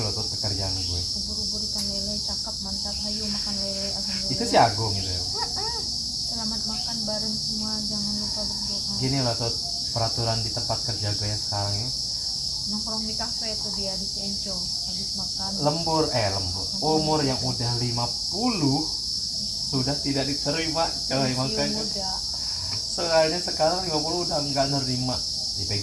loh tuh pekerjaan gue. ubur-ubur ikan lele cakep mantap hayu makan lele alhamdulillah. Itu si Agung gitu ya. Selamat makan bareng semua jangan lupa berdoa. Gini loh tuh peraturan di tempat kerja gue yang sekarang ini. Nongkrong di kafe tuh dia di Cienco habis makan Lembur. Umur yang udah 50 sudah tidak diterima coy, pensiun makanya muda soalnya sekarang 50 udah nggak nerima di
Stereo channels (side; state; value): both; identical; correlation 1.00